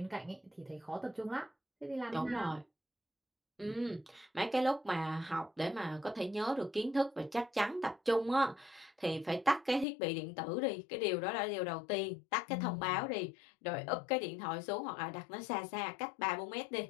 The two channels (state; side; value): drops out; right; at 9.9 s